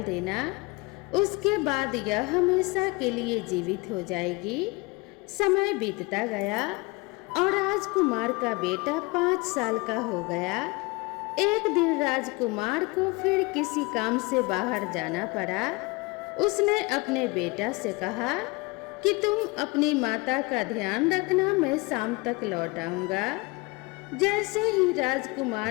देना। उसके बाद यह हमेशा के लिए जीवित हो जाएगी। समय बीतता गया और राजकुमार का बेटा 5 साल का हो गया। एक दिन राजकुमार को फिर किसी काम से बाहर जाना पड़ा। उसने अपने बेटा से कहा कि तुम अपनी माता का ध्यान रखना, मैं शाम तक लौट आऊंगा। जैसे ही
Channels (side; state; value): right; quieter; 25.3 dB